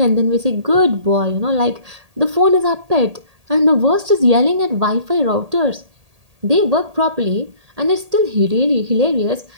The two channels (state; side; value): late; left; 1.8 ms